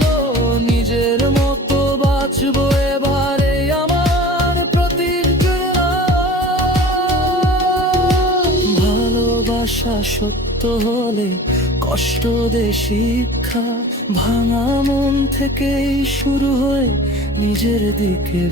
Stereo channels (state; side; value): normal; both; correlation 0.40